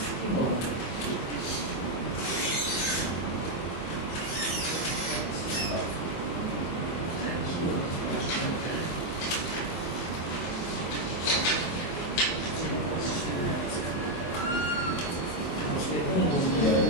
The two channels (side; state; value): right; late; 24 ms